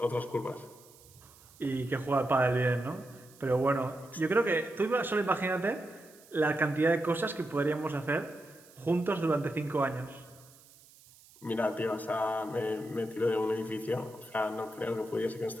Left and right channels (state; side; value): noise; right; hiss, 24 dB below the sound